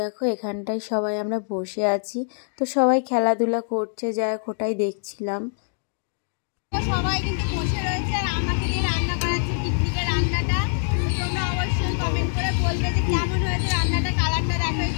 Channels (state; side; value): silent; right; digital silence